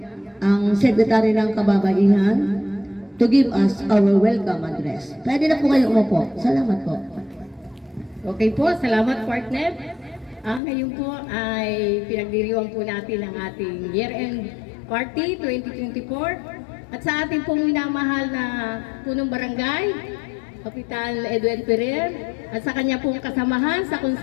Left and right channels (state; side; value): drops out; right; at 10.6 s